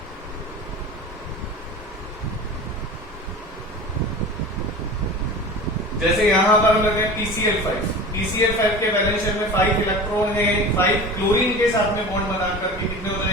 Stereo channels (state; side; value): normal; both; correlation 0.35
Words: जैसे यहां पर हम लेते हैं PCl5 के वैलेंस शेल में 5 इलेक्ट्रॉन है, 5 क्लोरीन के साथ में बॉन्ड बनाकर के कितने हो